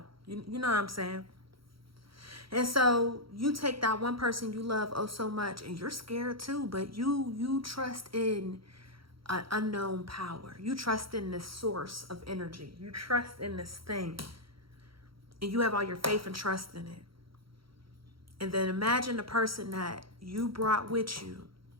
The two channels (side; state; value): left; late; 0.74 ms